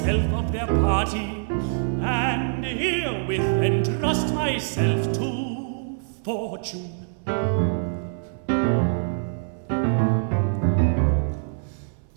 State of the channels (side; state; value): left; silent; 59 dB below the other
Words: of their party, and herewith entrust myself to fortune.